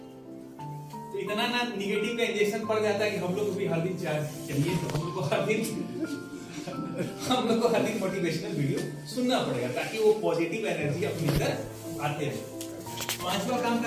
तो इतना ना निगेटिव का इंजेक्शन पड़ जाता है कि हम लोग को भी हर दिन चार्ज चाहिए। तो हम लोग को हर दिन मोटिवेशनल वीडियो सुनना पड़ेगा, ताकि वो पॉजिटिव एनर्जी अपने अंदर आते रहे। 5वां काम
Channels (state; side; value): identical; both; correlation 1.00